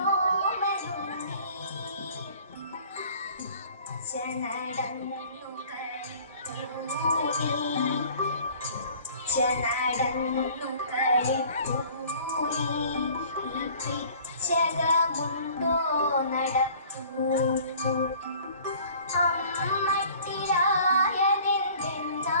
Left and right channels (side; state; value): both; inverted; correlation -0.51